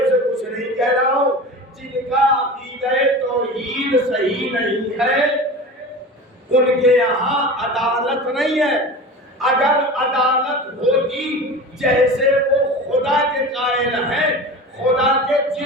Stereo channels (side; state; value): both; normal; correlation 0.32